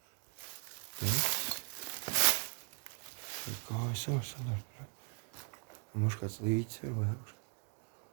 Tur kājas jau sanāk. Mums kāds līdzi ir vai augš.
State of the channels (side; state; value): left; quieter; 35.2 dB